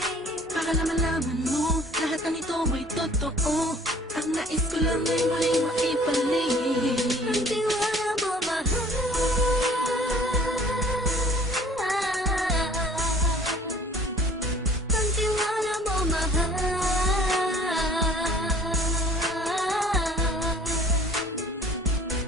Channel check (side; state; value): both; normal; correlation 0.52